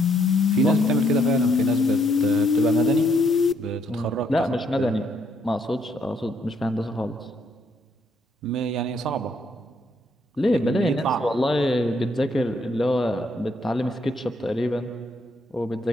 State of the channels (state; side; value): normal; both; correlation 0.71